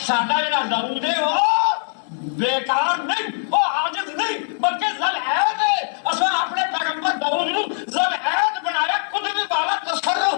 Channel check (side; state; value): right; silent; digital silence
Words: ساڈا جڑا داؤد ہے وہ بیکار نہیں، وہ عاجز نہیں، بلکہ ذل عید ہے۔ اساں اپنے پیغمبر داؤد نو ذل عید بنایا، قدرت والا، تصرف